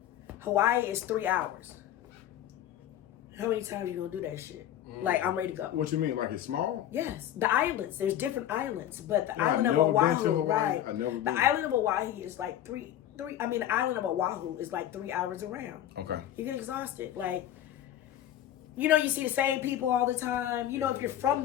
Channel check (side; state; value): right; quieter; 11.6 dB